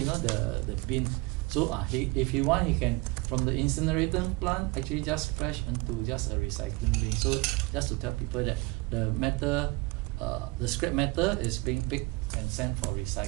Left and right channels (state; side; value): quieter; left; 24.5 dB